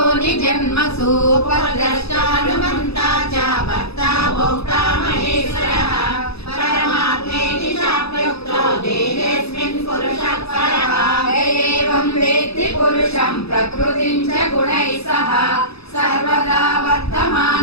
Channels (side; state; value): right; late; 0.78 ms